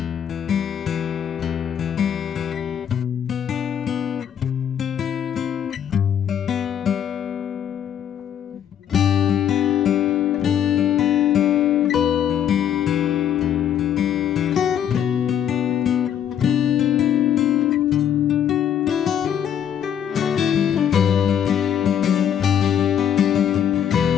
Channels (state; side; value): quieter; right; 9.3 dB